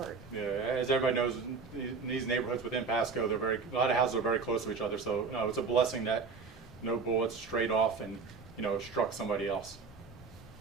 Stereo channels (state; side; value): quieter; left; 4.8 dB